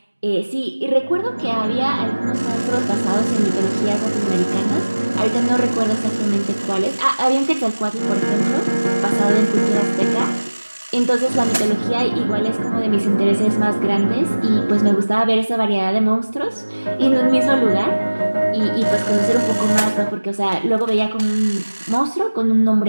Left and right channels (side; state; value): both; inverted; correlation -1.00